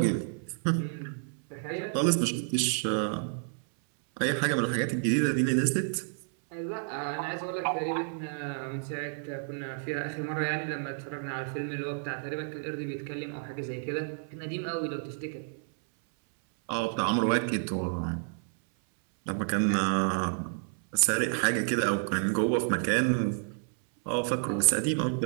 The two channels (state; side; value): silent; left; 58 dB below the other